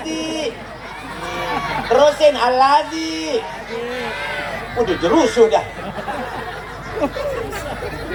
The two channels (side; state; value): both; identical; correlation 1.00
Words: Terusin Alladzi. Udah jerus sudah.